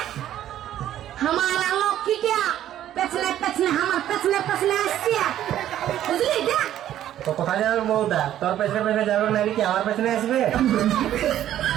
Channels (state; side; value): quieter; left; 11.9 dB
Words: আমার লক্ষ্মীটা পেছনে পেছনে আমার পেছনে পেছনে আসছে বুঝলি যা তো কোথায় যাবে বউটা তোর পেছনে পেছনে যাবে না কি আমার পেছনে আসবে